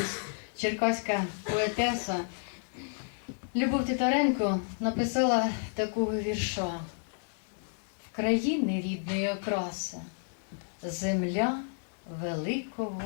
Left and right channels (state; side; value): silent; right; digital silence